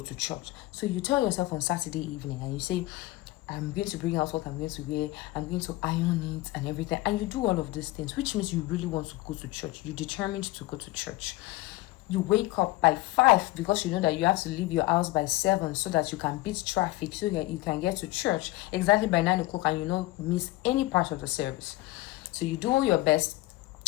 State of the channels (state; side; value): quieter; right; 19.0 dB